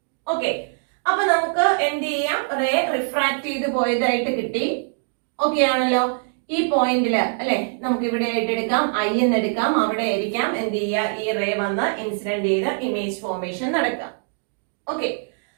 ഓക്കെ, അപ്പൊ നമുക്ക് എന്ത് ചെയ്യാം? റേ റിഫ്രാക്ട് ചെയ്ത് പോയതായിട്ട് കിട്ടി. ഓക്കെ ആണല്ലോ? ഈ പോയിന്റില് അല്ലെ നമുക്ക് ഇവിടെ ആയിട്ട് എടുക്കാം, I എന്ന് എടുക്കാം. അവിടെ ആയിരിക്കാം എന്ത് ചെയ്യുക? ഈ റേ വന്ന് ഇൻസിഡന്റ് ചെയ്ത് ഇമേജ് ഫോർമേഷൻ നടക്കാം. ഓക്കെ,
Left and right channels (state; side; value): silent; left; 59 dB below the other